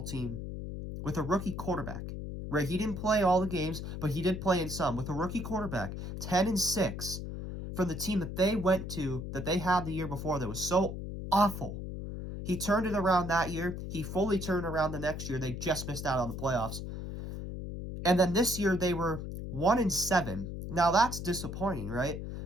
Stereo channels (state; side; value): noise; left; hum, 7 dB below the sound